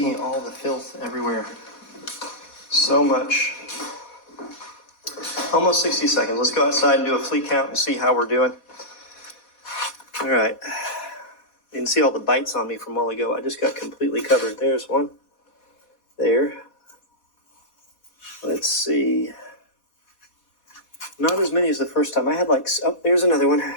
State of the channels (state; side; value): late; right; 4.2 ms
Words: see all the filth everywhere. So much. Almost 60 seconds. Let's go outside and do a flea count and see how we're doing. All right. You can see all the bites on me from a while ago. I just got completely covered. There's one. There. Let's see. Not as many as the first time. I had there's another one.